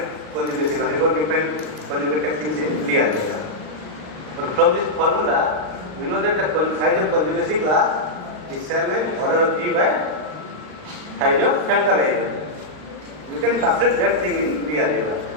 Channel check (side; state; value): left; late; 39 ms